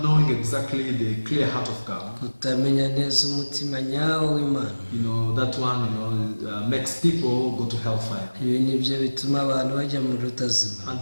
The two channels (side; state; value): both; inverted; correlation -1.00